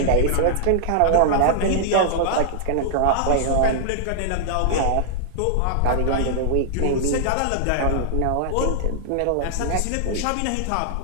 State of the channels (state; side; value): different; both; correlation -0.01